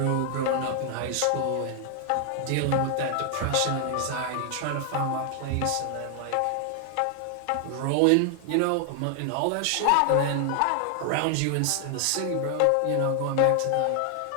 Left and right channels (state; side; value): different; both; correlation 0.00